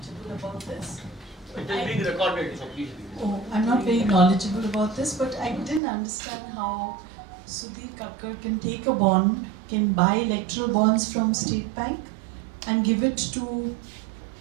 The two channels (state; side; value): drops out; left; at 5.8 s